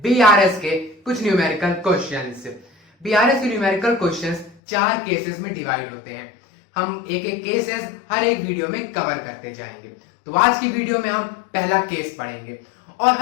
बीआरएस के कुछ न्यूमेरिकल क्वेश्चंस। बीआरएस के न्यूमेरिकल क्वेश्चंस 4 केसेस में डिवाइड होते हैं। हम एक एक केसेस हर एक वीडियो में कवर करते जाएंगे। तो आज की वीडियो में हम पहला केस पढ़ेंगे और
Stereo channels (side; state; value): right; drops out; at 4.5 s